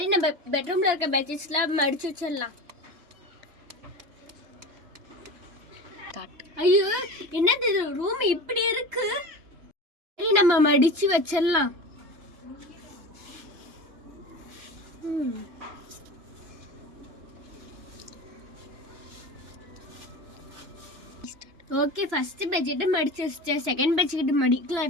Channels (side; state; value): left; late; 2.9 ms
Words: நம்ம பெட்ரூம்ல இருக்க பெட்ஷீட்ஸ்லாம் மடிச்சு வச்சிடலாம். ஐயோ, என்னது இது, ரூம் இப்படி இருக்கு. சரி, நம்ம மடிச்சு வச்சிடலாம். ஓகே, ஃபர்ஸ்ட் பெட்ஷீட் மடிச்சு வச்சிட்டேன். செகண்ட் பெட்ஷீட்